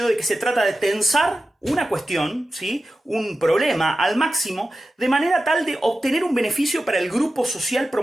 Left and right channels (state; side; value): normal; both; correlation 0.93